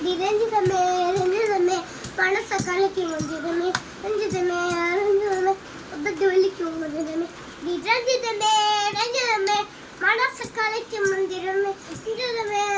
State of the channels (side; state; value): both; identical; correlation 1.00